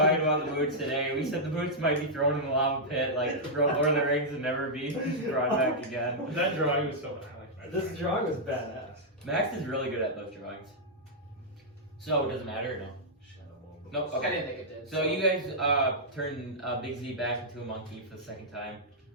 about the boots today. We said the boots might be thrown in the lava pit, like Lord of the Rings, and never be brought back again. That drawing was so bad. This drawing was badass. Max is really good at those drawings. So, does it matter or no? Nope, I okay. didn't think it did. So you guys turn Big Z back into a monkey for the second time.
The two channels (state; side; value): normal; both; correlation -0.08